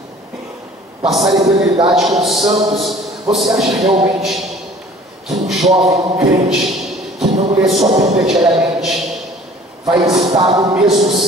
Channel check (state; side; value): normal; both; correlation 0.50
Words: passar a eternidade com os santos? Você acha realmente que um jovem, um crente, que não lê sua Bíblia diariamente, vai estar no mesmo